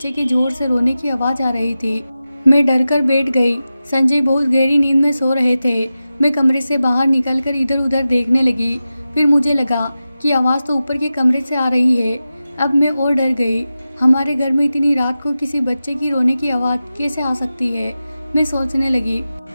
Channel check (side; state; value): both; inverted; correlation -0.93